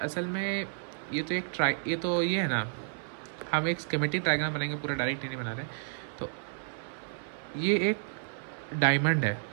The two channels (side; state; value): left; silent; 57 dB below the other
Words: में ये है ना, हम एक स्कीमेटिक डायग्राम बनाएंगे, पूरा डायरेक्ट नहीं बना रहे। तो ये एक डायमंड है,